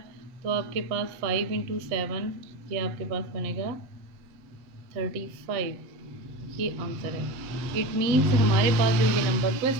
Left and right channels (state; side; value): late; left; 7.6 ms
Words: तो आपके पास 5 इंटू 7, ये आपके पास बनेगा 35। ये आंसर है। इट मीन्स हमारे पास जो ये नंबर